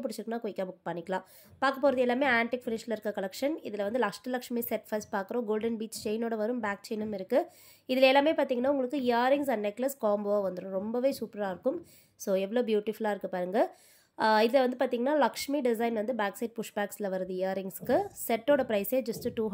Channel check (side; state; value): both; identical; correlation 1.00